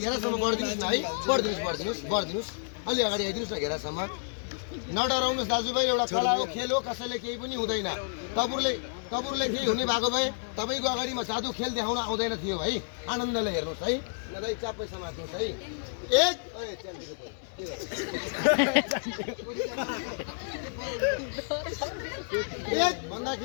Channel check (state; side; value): silent; right; 58 dB below the other